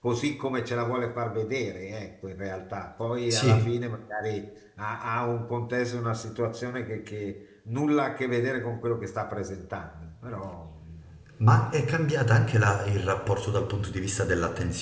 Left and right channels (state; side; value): identical; both; correlation 1.00